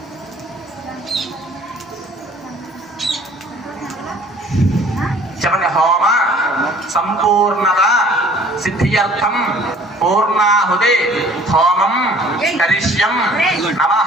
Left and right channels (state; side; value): normal; both; correlation 0.53